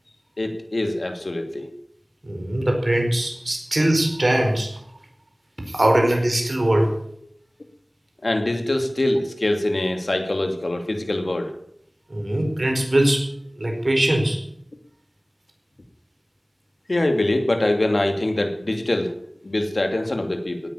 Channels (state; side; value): normal; both; correlation 0.98